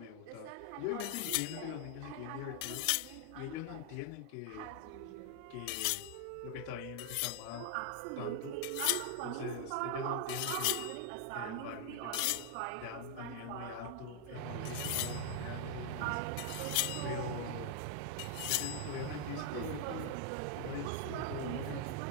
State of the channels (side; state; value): both; different; correlation 0.00